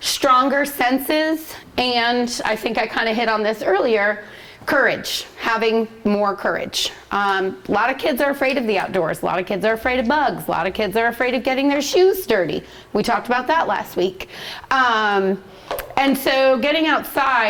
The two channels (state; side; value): identical; both; correlation 1.00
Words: senses, and I think I kind of hit on this earlier, courage, having more courage. A lot of kids are afraid of the outdoors. A lot of kids are afraid of bugs. A lot of kids are afraid of getting their shoes dirty. We talked about that last week. And so getting